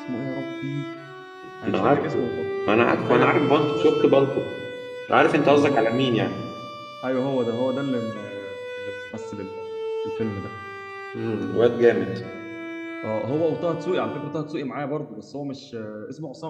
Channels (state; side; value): identical; both; correlation 1.00